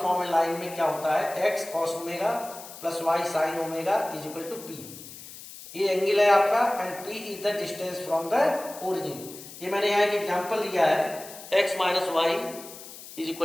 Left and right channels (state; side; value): noise; left; hiss, 15 dB below the sound